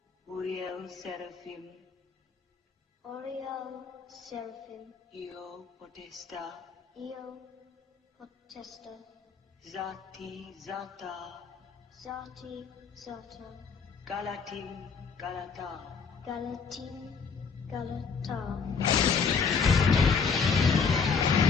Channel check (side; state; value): right; quieter; 5.6 dB